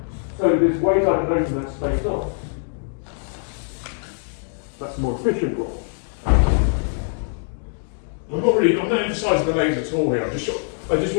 So there's ways I can open that space up. That's the more efficient roll. I'm not emphasising the legs at all here. I just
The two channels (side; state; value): right; silent; 63 dB below the other